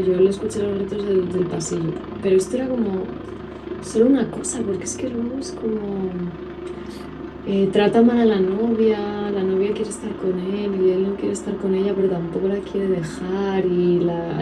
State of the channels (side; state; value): both; identical; correlation 1.00